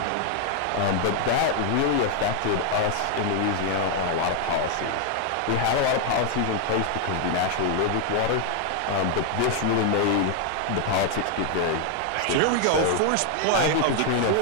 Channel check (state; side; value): different; both; correlation 0.01